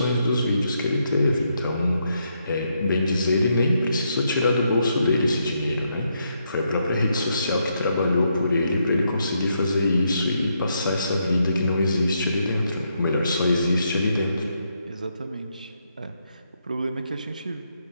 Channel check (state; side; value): inverted; both; correlation -0.78